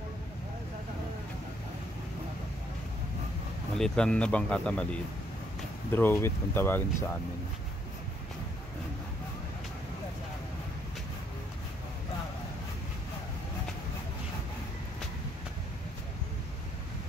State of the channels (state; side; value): normal; both; correlation 0.70